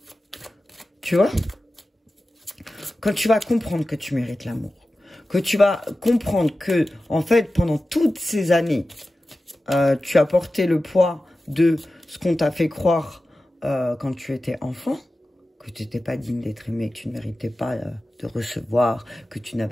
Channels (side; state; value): both; normal; correlation 0.94